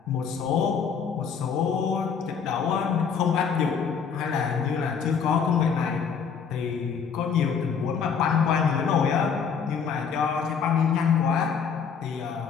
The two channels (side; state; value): right; quieter; 6.5 dB